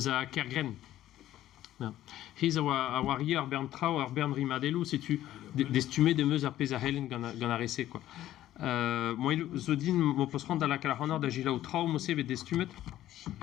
Kergren. Ja. Hier a warrior Bern Trau ar Bern Rimadelu si tu d'estumé de meus a pez a helen gant a rese quoi. Moi zo din mo posrand da la kalahonor da gila ou trau mo seve d'estumet.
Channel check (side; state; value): right; quieter; 13.4 dB